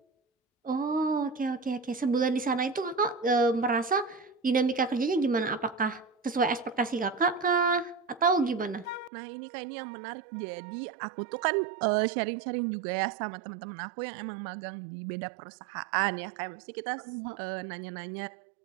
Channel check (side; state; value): left; drops out; at 9.1 s